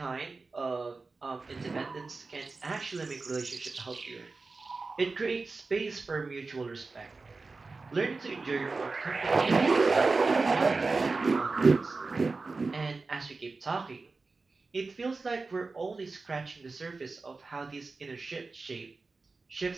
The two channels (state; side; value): quieter; left; 3.9 dB